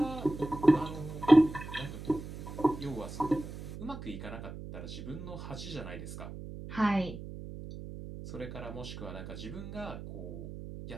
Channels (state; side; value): noise; right; hum, 10 dB below the sound